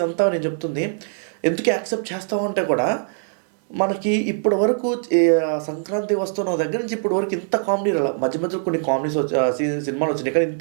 నేను చెప్తుంది ఎందుకు యాక్సెప్ట్ చేస్తామంటే కూడా, మనకి ఇప్పటి వరకు సంక్రాంతి వస్తున్న దగ్గర నుంచి ఇప్పటి వరకు ఇంత కామెడీ రాల. మధ్యలో కొన్ని కామెడీస్ సినిమాలు వచ్చినాయి, కానీ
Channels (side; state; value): left; silent; digital silence